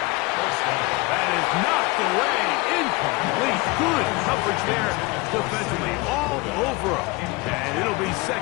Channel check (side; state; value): right; quieter; 23.9 dB